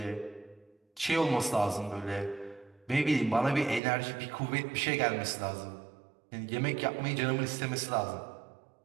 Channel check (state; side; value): drops out; left; at 3.8 s